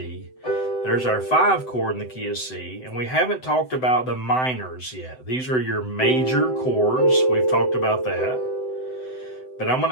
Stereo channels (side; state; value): right; late; 7.9 ms